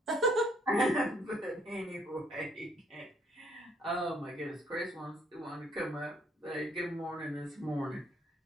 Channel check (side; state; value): both; normal; correlation 0.65